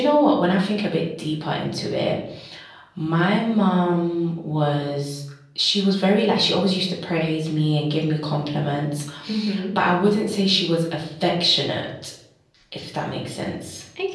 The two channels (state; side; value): identical; both; correlation 1.00